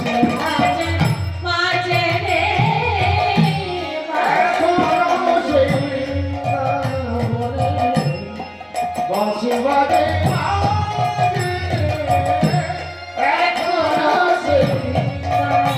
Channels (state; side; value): identical; both; correlation 1.00